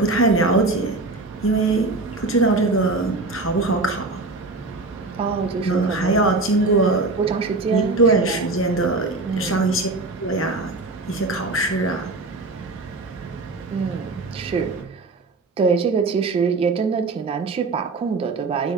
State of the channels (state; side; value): quieter; left; 3.4 dB